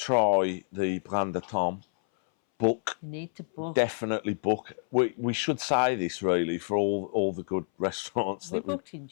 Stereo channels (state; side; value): silent; right; 59 dB below the other